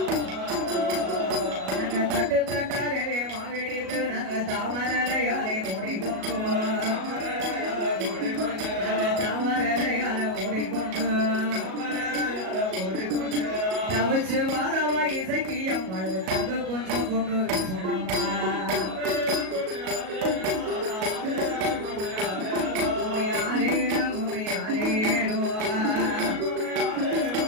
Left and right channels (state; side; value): late; left; 37 ms